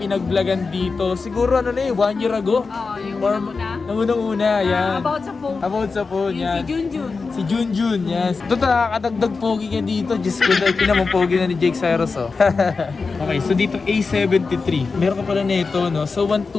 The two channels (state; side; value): quieter; right; 4.4 dB